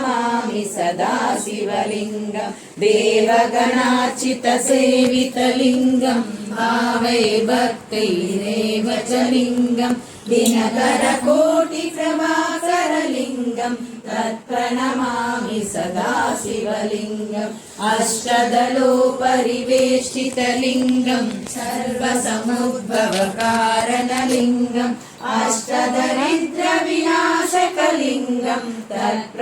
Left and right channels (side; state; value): both; identical; correlation 1.00